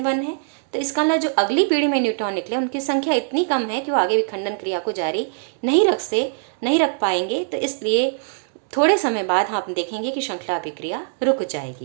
1 है तो इसका मतलब जो अगली पीढ़ी में न्यूट्रॉन निकले उनकी संख्या इतनी कम है कि वो आगे विखंडन क्रिया को जारी नहीं रख पाएंगे। तो इसलिए थोड़े समय बाद हम देखेंगे कि श्रृंखला अभिक्रिया रुक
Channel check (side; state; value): left; silent; digital silence